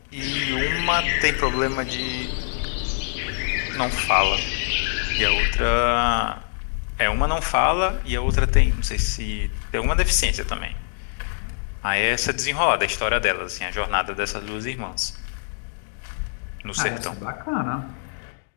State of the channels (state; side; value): silent; right; digital silence